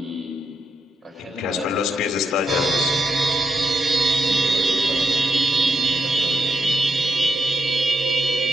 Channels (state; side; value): normal; both; correlation 0.81